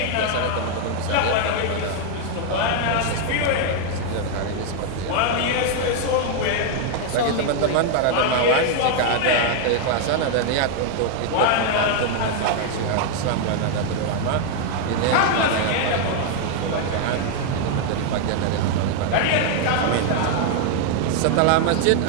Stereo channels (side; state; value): both; different; correlation 0.00